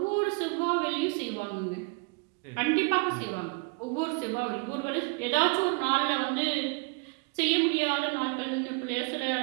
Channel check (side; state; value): left; quieter; 32.5 dB